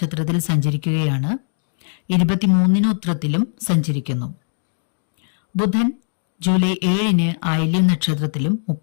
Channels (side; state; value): right; silent; digital silence